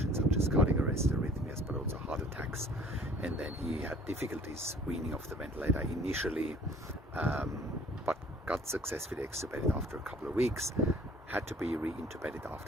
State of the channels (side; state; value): both; normal; correlation 0.54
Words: such as cardiac arrest, arrhythmias, but also heart attacks. And then he had difficulties weaning off the ventilator initially, but got successfully extubated after a couple of weeks, had to be reintubated